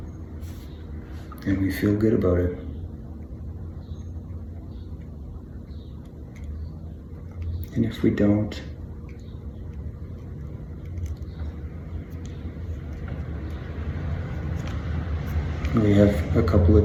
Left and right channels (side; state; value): both; identical; correlation 1.00